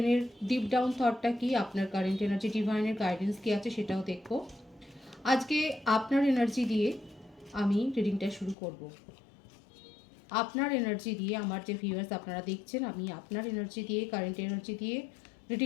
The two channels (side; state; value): right; drops out; at 8.6 s